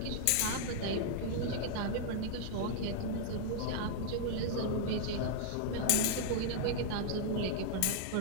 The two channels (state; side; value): different; both; correlation -0.01